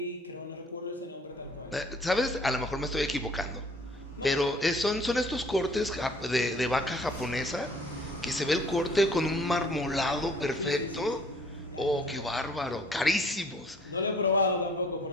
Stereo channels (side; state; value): both; normal; correlation 0.55